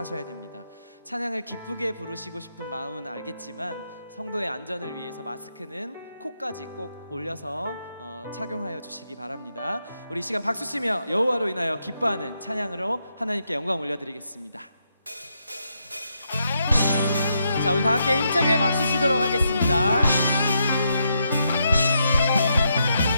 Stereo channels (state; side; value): inverted; both; correlation -0.80